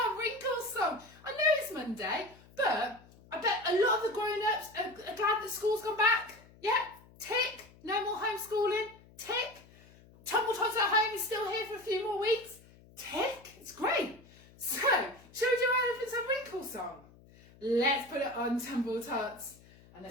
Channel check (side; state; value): left; noise; hum, 25 dB below the sound